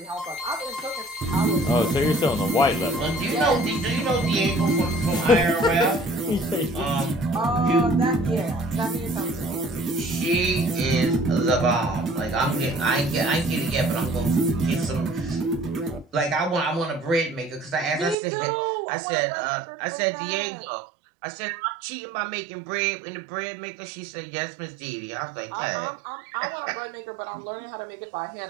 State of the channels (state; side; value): drops out; left; at 18.2 s